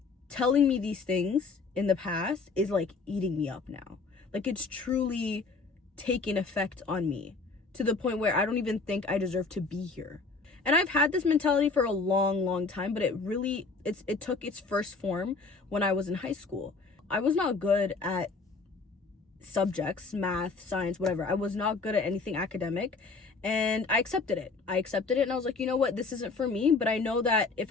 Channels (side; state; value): right; quieter; 4.1 dB